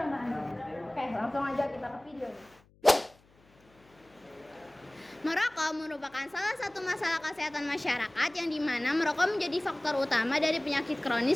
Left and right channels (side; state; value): left; noise; hum, 30 dB below the sound